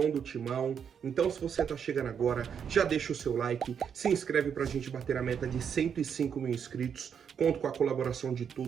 do Timão. Então se você tá chegando agora, já deixa o seu like, se inscreve pra gente bater a meta de 105 mil inscritos. Conto com a colaboração de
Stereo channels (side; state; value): left; quieter; 7.5 dB